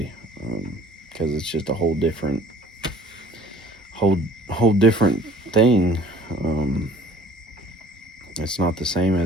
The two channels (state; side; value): normal; both; correlation 0.52